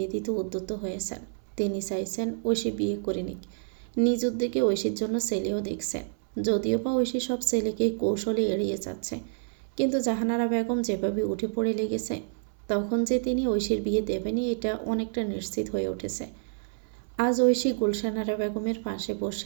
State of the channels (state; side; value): silent; left; 59 dB below the other